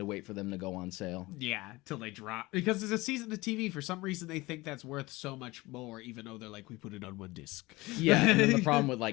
wait for them to go on sale. Yeah, till they drop. Because there's a season of TV. For some reason, they think that's worth so much more, even though they're like, we put it on one disc. Yeah, and then the problem with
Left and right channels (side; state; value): right; quieter; 21.2 dB